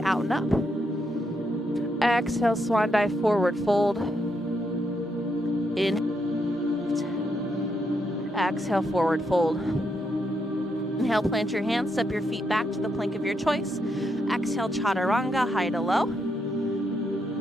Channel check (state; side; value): normal; both; correlation 0.79